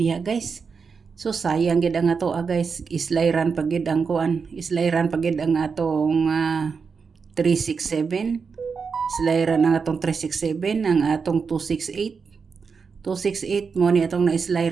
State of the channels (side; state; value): left; quieter; 5.5 dB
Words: guys. So sayang gid ang ato guys, islayran pagid ang kuan, islayran pagid ang atong 367. Islayran ang atong 367, ang atong 268. 268 mo ni atong